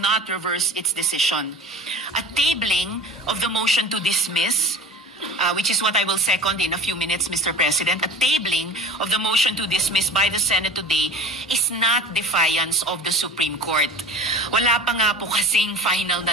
reverse its decision. A tabling of the motion to dismiss, which is what I will second in a few minutes, Mr. President, a tabling of the motion to dismiss by the Senate today is not defiance of the Supreme Court. Wala pa nga po kasing final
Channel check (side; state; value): both; normal; correlation 0.38